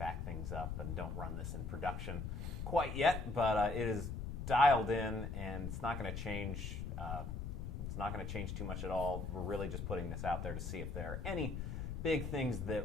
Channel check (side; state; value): left; noise; rumble, 4 dB below the sound